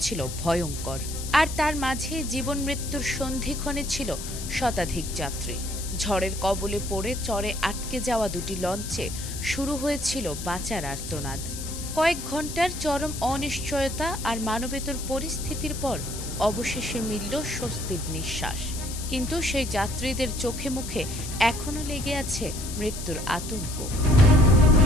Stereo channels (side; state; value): left; noise; hiss, 9 dB below the sound